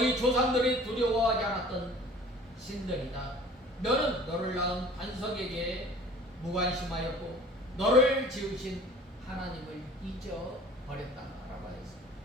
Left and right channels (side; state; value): both; normal; correlation 0.47